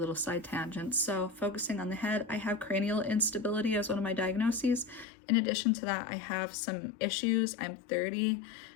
side tangents. So focusing on the head, I have cranial instability as one of my diagnoses. In addition to that, I have some issues. I'm 30.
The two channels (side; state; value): right; drops out; at 5.1 s